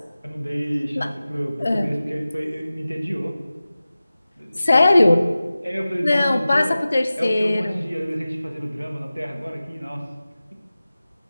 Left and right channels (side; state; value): both; inverted; correlation -0.96